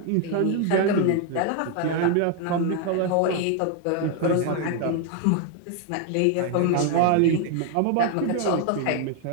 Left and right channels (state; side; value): different; both; correlation 0.00